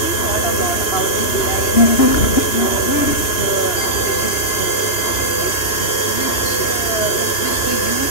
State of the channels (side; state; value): right; late; 2.8 ms